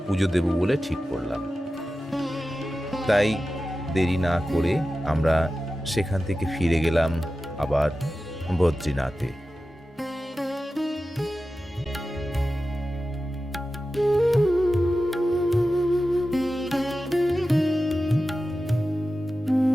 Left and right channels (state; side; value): normal; both; correlation 0.93